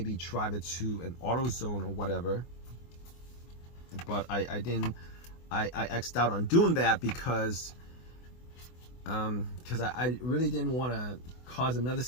drive it to an AutoZone or whatever. But I didn't. I X'd out on doing that because I really didn't want to cause another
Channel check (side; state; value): right; late; 24 ms